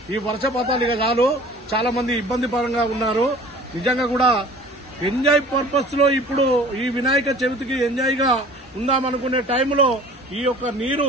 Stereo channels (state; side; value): normal; both; correlation 0.46